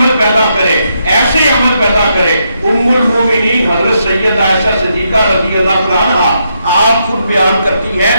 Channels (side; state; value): both; inverted; correlation -0.79